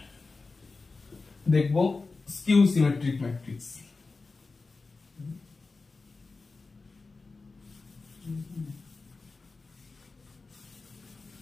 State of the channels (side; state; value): right; quieter; 3.9 dB